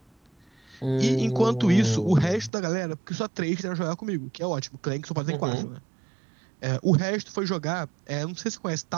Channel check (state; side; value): drops out; left; at 2.5 s